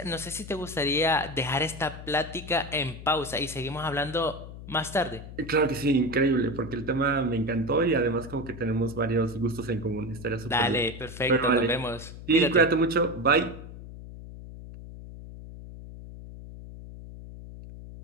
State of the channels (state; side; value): noise; left; hum, 13 dB below the sound